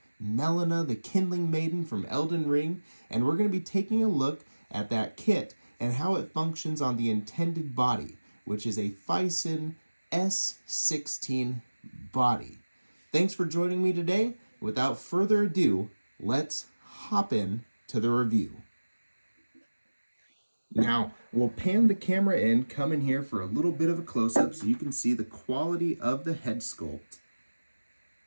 Melina, the Kindling Maiden from Elden Ring, and we're going to be taking a look at that kit and how it functions on the intended body, which is a Phison S16 body. Thanks for joining me today. Without further ado, let's hop in to the review. Now, we'll pan the camera in, come in here for a little bit of a close-up so you can see the quality of the head sculpt.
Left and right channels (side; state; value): both; inverted; correlation -1.00